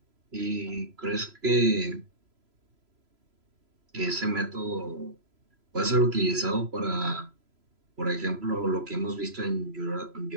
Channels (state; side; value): late; left; 3.0 ms